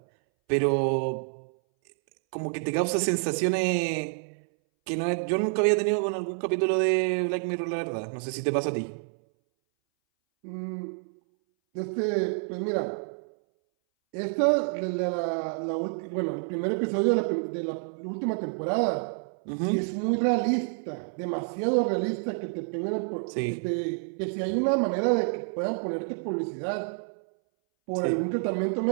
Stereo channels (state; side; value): silent; left; 59 dB below the other